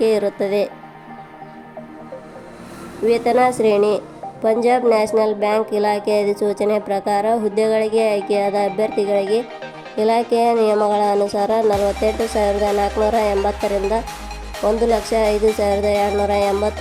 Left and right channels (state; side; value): identical; both; correlation 1.00